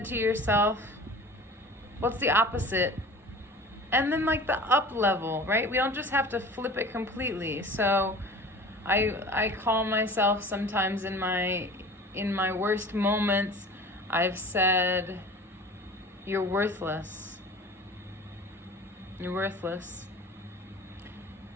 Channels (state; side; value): normal; both; correlation 0.40